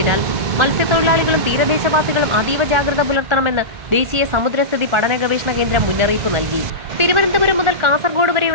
മത്സ്യത്തൊഴിലാളികളും തീരദേശവാസികളും അതീവ ജാഗ്രത പുലർത്തണമെന്ന് ദേശീയ സമുദ്രസ്ഥിതി പഠന ഗവേഷണ കേന്ദ്രം മുന്നറിയിപ്പ് നൽകി. തിരുവനന്തപുരം മുതൽ കാസർഗോഡ്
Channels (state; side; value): late; left; 1.4 ms